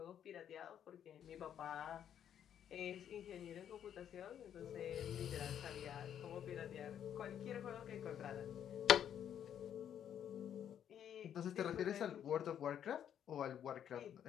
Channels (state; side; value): quieter; right; 9.5 dB